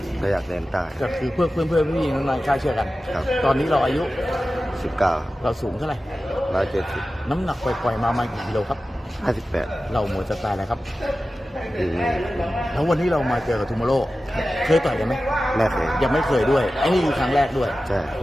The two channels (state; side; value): normal; both; correlation 0.94